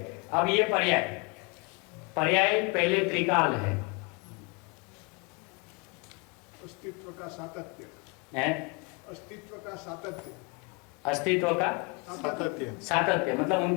अब ये पर्याय पहले त्रिकाल है, अस्तित्व का सातत्य है? अस्तित्व का सातत्य, अस्तित्व का सातत्य मतलब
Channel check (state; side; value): quieter; right; 31.5 dB